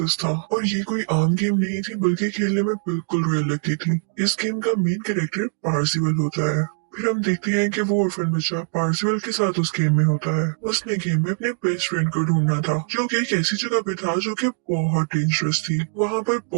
था। और ये कोई आम गेम नहीं थी बल्कि खेलने में बिल्कुल रियल लगती थी। इस गेम का मेन कैरेक्टर पार्सिवल होता है। फिर हम देखते हैं कि वो ऑर्फन बच्चा पार्सिवल के साथ उस गेम में होता है। उसने गेम में अपने बेस्ट फ्रेंड को ढूंढना था जो कि एक ऐसी जगह पे था जो कि बहुत डेंजरस थी। वहाँ पर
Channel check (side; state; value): left; silent; digital silence